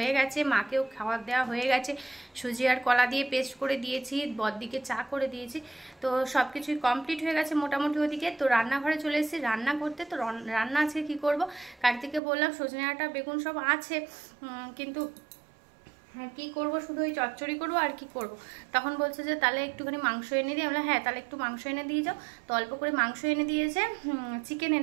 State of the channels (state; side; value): drops out; left; at 12.2 s